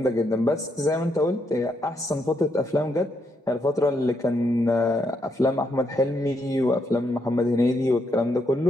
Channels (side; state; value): both; normal; correlation 0.78